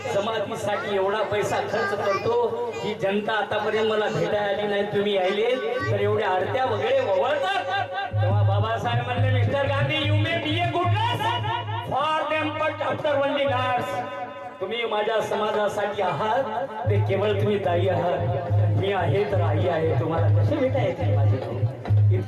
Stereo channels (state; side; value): identical; both; correlation 1.00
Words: जमातीसाठी एवढा पैसा खर्च करतो, ही जनता आतापर्यंत मला भेटायला आली नाही, तुम्ही यायले तर एवढ्या आरत्या वगैरे वळतात. तेव्हा बाबासाहेब म्हणले, mister Gandhi, you may be a good but after only nurse. तुम्ही माझ्या समाजासाठी आहात ते केवळ तुम्ही दाई आहात. मी आहे तर आई आहे. तुम्हाला कसे भेटा येतील माझे भाऊ?